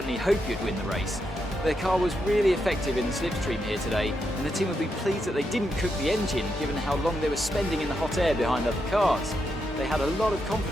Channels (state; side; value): normal; both; correlation 0.83